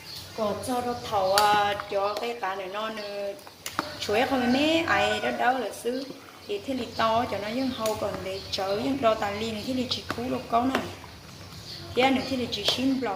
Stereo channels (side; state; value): both; identical; correlation 1.00